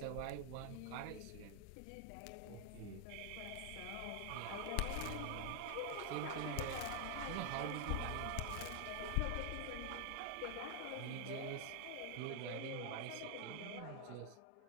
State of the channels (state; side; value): different; both; correlation 0.00